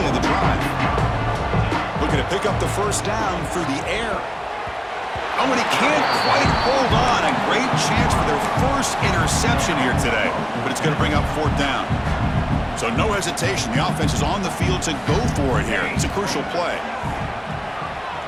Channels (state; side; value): identical; both; correlation 1.00